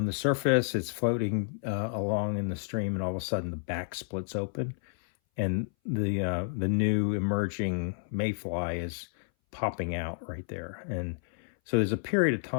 the surface, it's floating along in the stream, and all of a sudden the back splits open, and the new emerging mayfly is popping out right there. And so there's a period of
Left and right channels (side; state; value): right; silent; 58 dB below the other